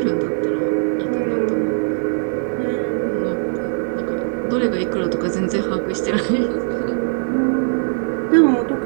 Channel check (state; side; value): silent; left; digital silence